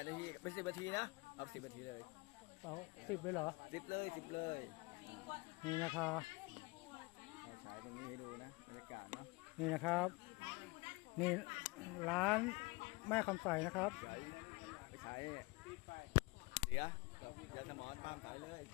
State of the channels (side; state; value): right; quieter; 25.0 dB